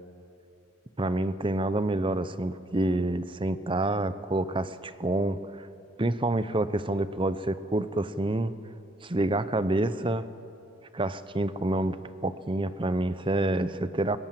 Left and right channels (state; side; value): normal; both; correlation 0.68